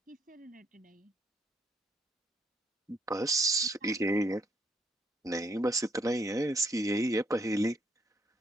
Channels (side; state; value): both; normal; correlation 0.71